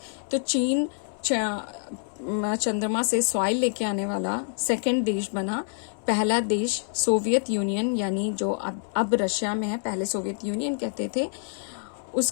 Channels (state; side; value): silent; right; 60 dB below the other